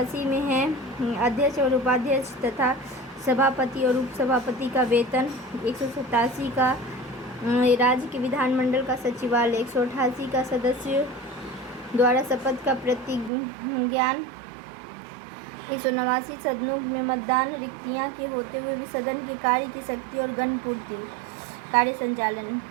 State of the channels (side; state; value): left; drops out; at 13.3 s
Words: में है अध्यक्ष और उपाध्यक्ष तथा सभापति और उपसभापति का वेतन। 187 का राज्य के विधानमंडल का सचिवालय। 188 का सदस्यों द्वारा शपथ का प्रतिज्ञान। 189 सदनों में मतदान, रिक्तियां के होते हुए भी सदन के कार्य की शक्ति और गणपूर्ति, कार्य संचालन